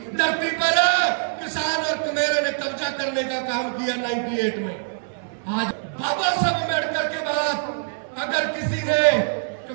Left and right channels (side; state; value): left; silent; digital silence